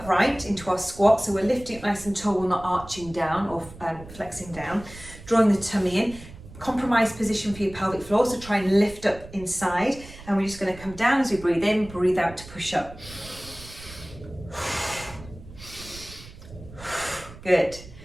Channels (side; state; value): right; noise; rumble, 17 dB below the sound